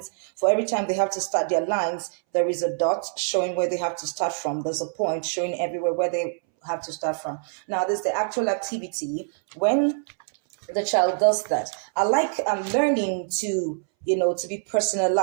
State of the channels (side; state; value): left; silent; 62 dB below the other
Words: For every time they have to start their lines, there is a dot showing where they have to start from. There's a point showing everywhere where they have to start from. Now, there's the actual activity. When the child does that, I like learning to, to be